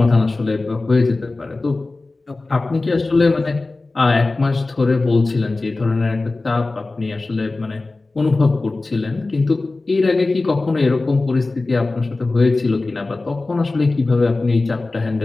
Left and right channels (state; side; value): quieter; right; 3.3 dB